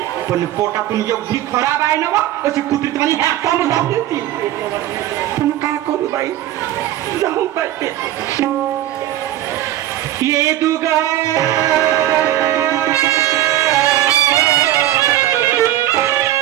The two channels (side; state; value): left; quieter; 13.5 dB